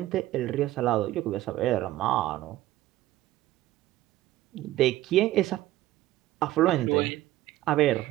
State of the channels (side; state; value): left; quieter; 15.5 dB